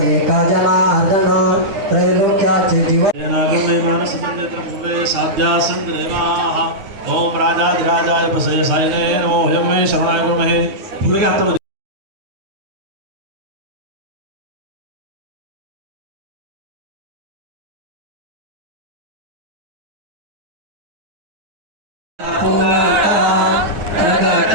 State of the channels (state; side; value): late; left; 9.2 ms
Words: एका जनार्दन त्रैलोक्याचे जीवन ओम राजाधिराजाय प्रसय सायने नमो हयं मे शरणाय गुरुमहे पुढे घातलं